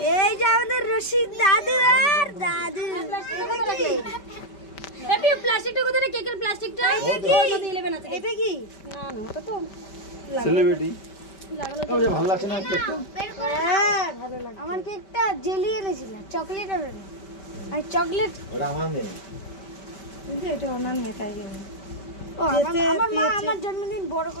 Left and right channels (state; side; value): late; right; 5.2 ms